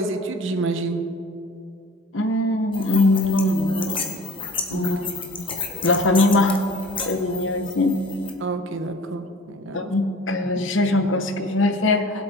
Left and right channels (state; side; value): normal; both; correlation 0.45